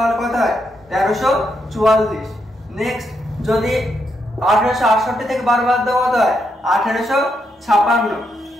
কত হয়? 1344। নেক্সট যদি 1868 থেকে 12 বাদ দাও কত হয়? 1856।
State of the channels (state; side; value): normal; both; correlation 0.80